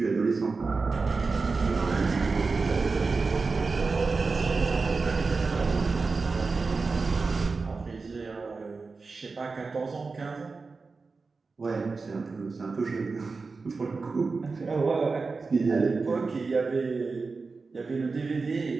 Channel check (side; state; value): left; quieter; 4.2 dB